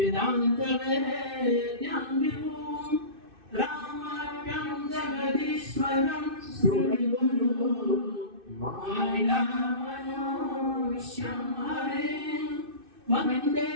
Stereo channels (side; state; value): left; late; 2.6 ms